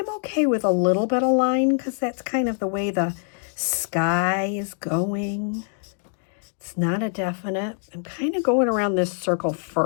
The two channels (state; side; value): silent; right; 62 dB below the other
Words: okay with a little bit of line because that's kind of the way the sky is going. It's not a definite. I'm kind of going around this circle